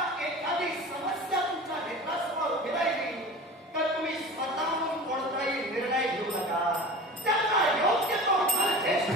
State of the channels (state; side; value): normal; both; correlation 0.35